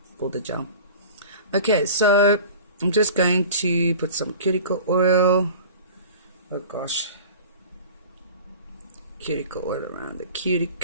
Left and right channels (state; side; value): inverted; both; correlation -0.39